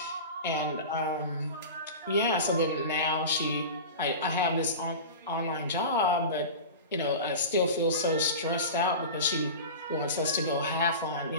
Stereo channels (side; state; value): both; inverted; correlation -0.31